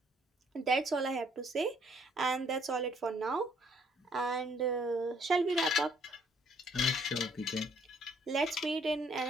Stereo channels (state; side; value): normal; both; correlation 0.65